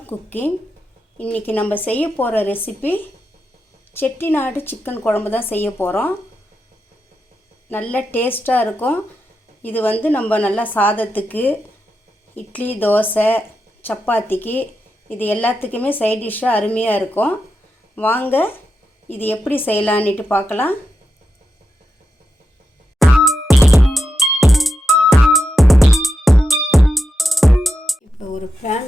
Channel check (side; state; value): both; normal; correlation 0.87